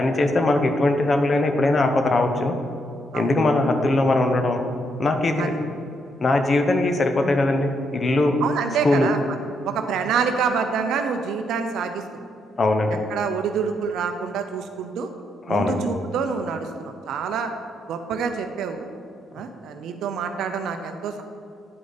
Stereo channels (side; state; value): both; normal; correlation 0.76